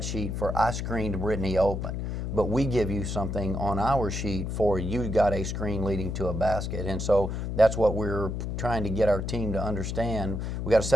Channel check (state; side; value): noise; left; hum, 3 dB below the sound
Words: sheet for I screened Brittany open, but we give you something on our sheet for you got a screen leading to a basket. And so that's what we're trying to get our team to understand. We got to